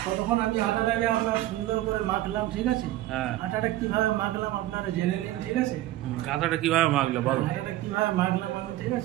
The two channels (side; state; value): left; quieter; 15.2 dB